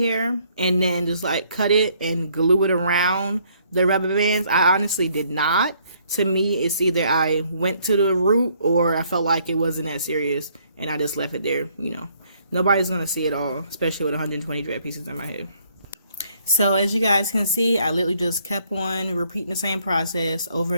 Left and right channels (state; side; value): inverted; both; correlation -0.66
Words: and then just like cut it and glue it around the rubber bands. I honestly did not. To me, it's either I went to the root or I felt like it wasn't that serious and I just left it there, you know. Nobody's going to see it all, especially with 120 dread pieces in my head. So as you guys can see, I literally just kept on repeating the same process over